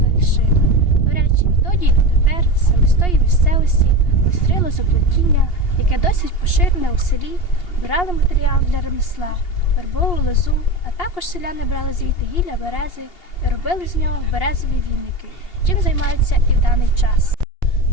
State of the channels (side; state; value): right; late; 2.8 ms